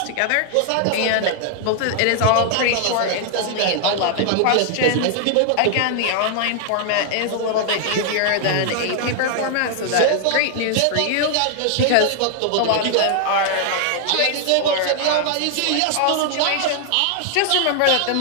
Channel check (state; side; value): different; both; correlation 0.00